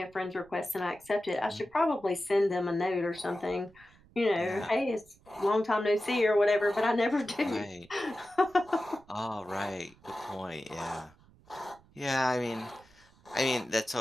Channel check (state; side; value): noise; right; rumble, 28 dB below the sound